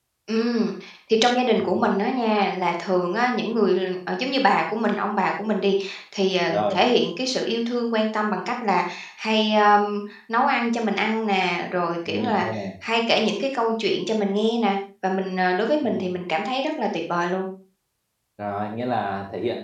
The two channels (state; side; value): identical; both; correlation 1.00